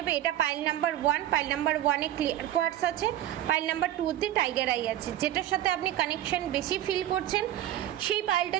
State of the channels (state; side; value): quieter; left; 12.8 dB